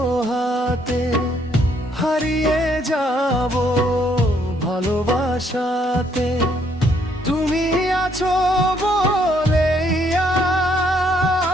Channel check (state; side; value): normal; both; correlation 0.69